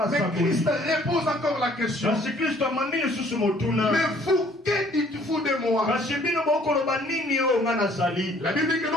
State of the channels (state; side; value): normal; both; correlation 0.59